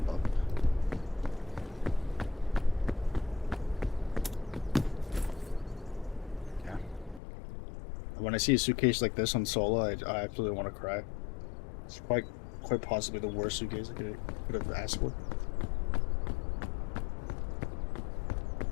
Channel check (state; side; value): drops out; right; at 7.2 s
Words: bong. Yeah. When I see a suitcase like this on solo, I absolutely want to cry. It's quite possibly the worst suitcase I could have asked for.